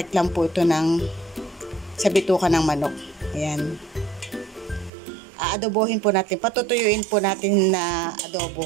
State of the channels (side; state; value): left; drops out; at 4.9 s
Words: lang po ito sa bituka ng manok. Ayan. Aadobohin po natin. Patutuyuin po natin na